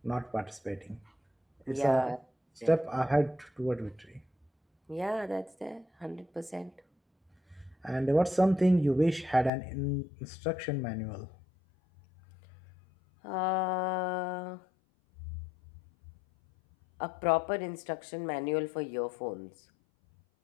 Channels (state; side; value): drops out; right; at 9.5 s